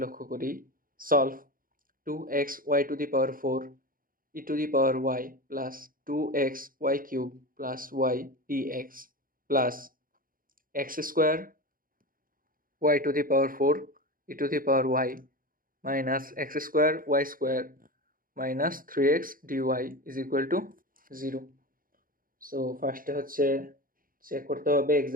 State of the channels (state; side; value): late; left; 0.41 ms